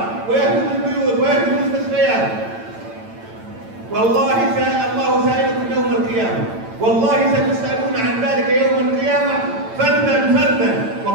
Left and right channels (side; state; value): left; late; 8.9 ms